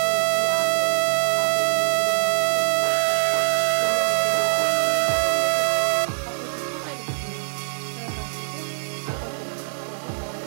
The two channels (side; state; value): left; silent; digital silence